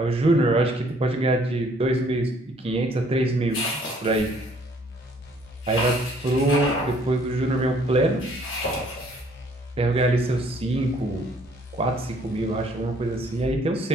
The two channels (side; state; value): both; normal; correlation 0.61